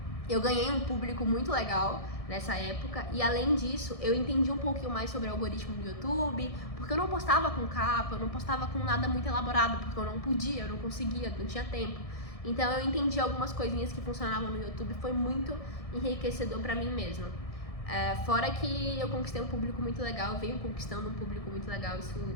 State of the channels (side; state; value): right; late; 1.6 ms